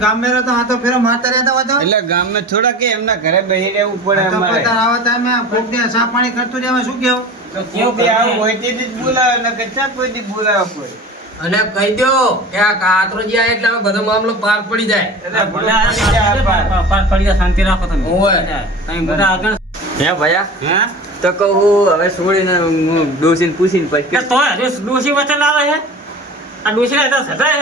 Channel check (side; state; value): both; normal; correlation 0.36